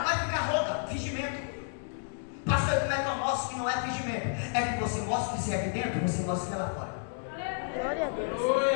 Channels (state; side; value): silent; right; digital silence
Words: vai ficar rouca, fingimento. Pastor, como é que eu mostro que não é fingimento? É que você mostra que você é aqui dentro, você mostra que é lá fora. Glória a Deus.